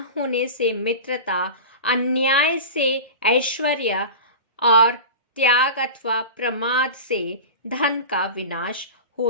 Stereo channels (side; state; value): both; inverted; correlation -0.30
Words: होने से मित्रता, अन्याय से ऐश्वर्य और त्याग अथवा प्रमाद से धन का विनाश